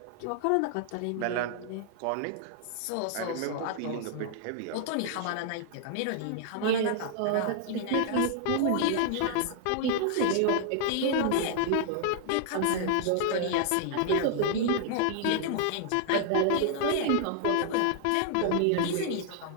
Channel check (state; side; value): different; both; correlation 0.00